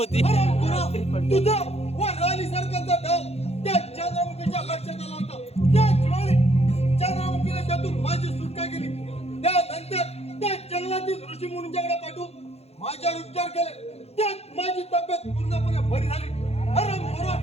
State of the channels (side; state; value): right; late; 0.30 ms